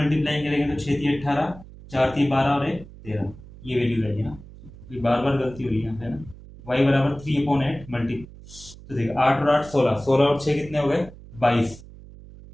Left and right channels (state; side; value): noise; right; hum, 18 dB below the sound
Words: करेंगे तो 6 3 18, 4 3 12 और 1 13, ये वैल्यू रहेगी ना। ये बार बार गलती हुई यहाँ पे ना। y बराबर 3/8 मल्टी, तो देखिए 8 और 8 16, 16 और 6 कितने हो गए 22,